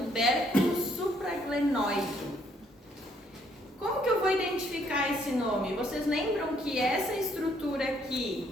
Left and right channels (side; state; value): both; normal; correlation 0.68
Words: supraglenoide. Como que eu vou identificar esse nome? Vocês lembram que essa estrutura